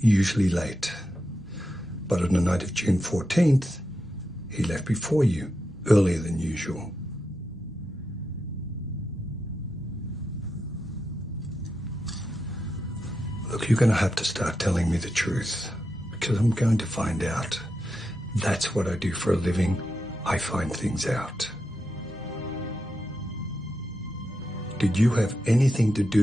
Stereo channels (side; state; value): both; normal; correlation 0.87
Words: usually late. But on the night of June 14th, he left before you, earlier than usual. Look, you're going to have to start telling me the truth, because I'm going to find out. That's what I do for a living. I find things out. Did you have anything to